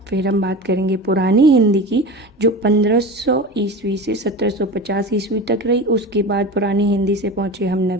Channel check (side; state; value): both; normal; correlation 0.30